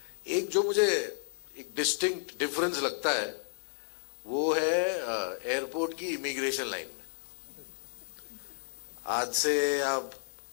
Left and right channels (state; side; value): silent; right; digital silence